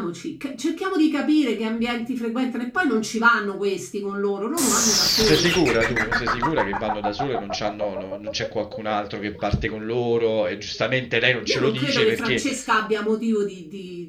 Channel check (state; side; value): identical; both; correlation 1.00